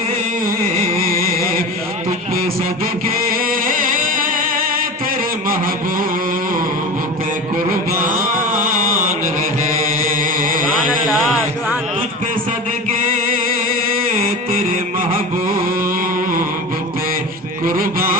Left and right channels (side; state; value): both; normal; correlation 0.30